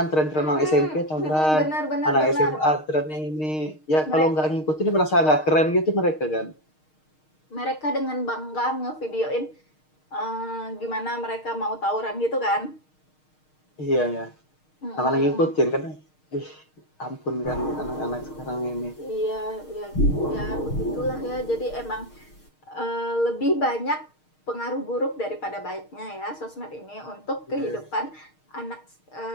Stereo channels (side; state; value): right; late; 6.5 ms